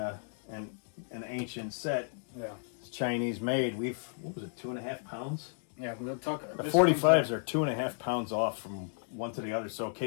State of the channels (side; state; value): right; silent; 56 dB below the other